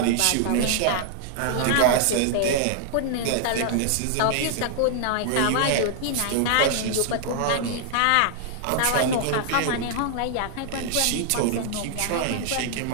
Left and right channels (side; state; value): both; different; correlation 0.00